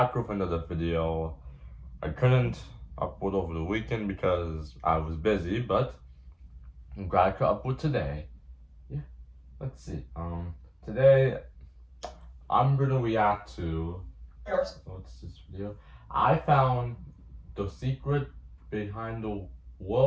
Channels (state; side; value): identical; both; correlation 1.00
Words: with another video. I couldn't upload over the weekend because I was busy, but I'm glad I could upload today. Yeah, let's see. Today I'm gonna react to what's this video? I found the secret behind the